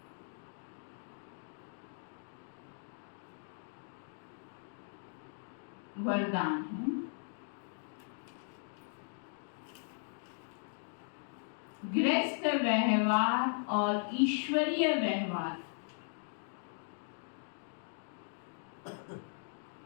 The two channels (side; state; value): right; silent; digital silence